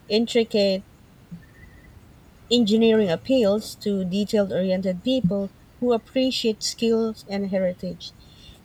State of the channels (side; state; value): both; identical; correlation 1.00